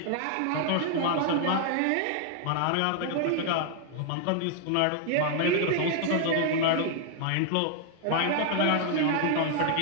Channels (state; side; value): different; both; correlation 0.00